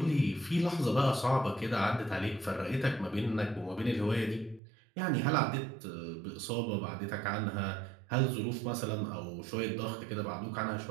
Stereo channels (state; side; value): drops out; left; at 4.6 s